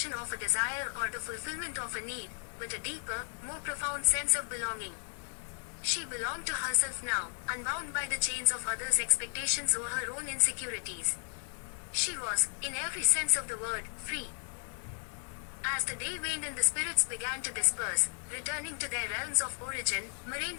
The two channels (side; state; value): right; silent; 55 dB below the other